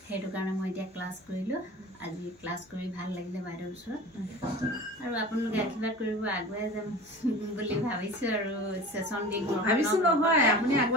সেইটো কাৰণে মই এতিয়া ক্লাছ কৰিলোঁ আজি ক্লাছ কৰি ভাল লাগিলে বাইদেউৰ ওচৰত আৰু আপোনালোকে আশীৰ্বাদ কৰিব আগুৱাই যাম বুলি ভাবিছোঁ আৰু সেশন দি ভাবিছোঁ নহয় আপুনি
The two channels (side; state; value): both; normal; correlation 0.37